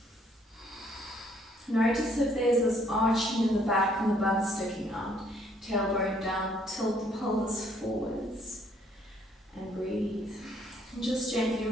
Notice if there's this arching in the back and the butt sticking out. Tailbone down, tilt the pelvis forwards and breathe. And just gently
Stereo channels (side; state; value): both; normal; correlation 0.66